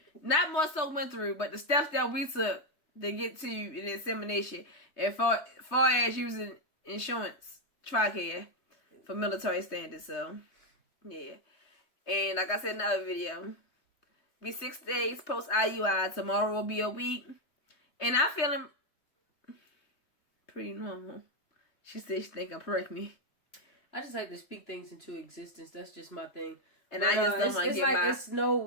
Not more so went through, but the steps that we took to get to the insemination, as far as using insurance, Tricare, for military standards. So, yeah. And like I said in the other video, be 6 days post IUI. Tomorrow will be a week. And I'm feeling pretty normal. She said she think I'm pregnant. I just like to speak things into existence. That's just my thing. And I just don't want to get like it's no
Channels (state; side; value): late; right; 3.2 ms